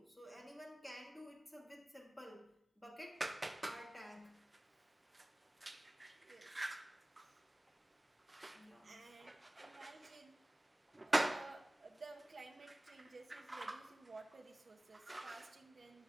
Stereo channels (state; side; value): normal; both; correlation 0.98